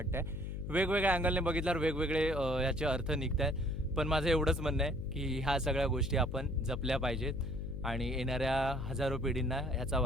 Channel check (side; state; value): left; noise; hum, 5 dB below the sound